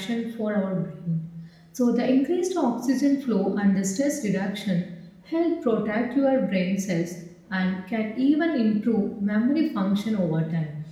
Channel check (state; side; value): identical; both; correlation 1.00